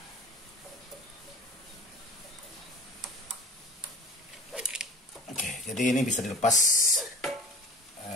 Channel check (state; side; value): normal; both; correlation 0.40